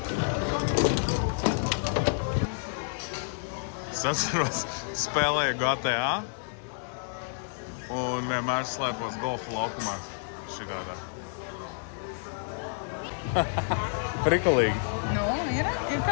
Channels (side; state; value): right; silent; digital silence